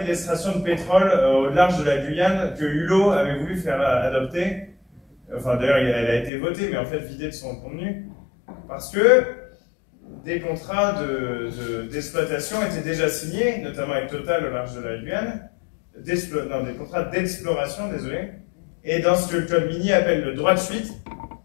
de l'extraction de pétrole au large de la Guyane que Hulot avait voulu faire adopter. Enfin, d'ailleurs, elle a été votée, mais en fait vidée de son contenu, parce que des contrats d'exploitation étaient déjà signés, notamment avec Total au large de la Guyane, des contrats d'exploration, désolé, et dans ce que le code minier appelle le droit de suite,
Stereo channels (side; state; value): right; drops out; at 6.3 s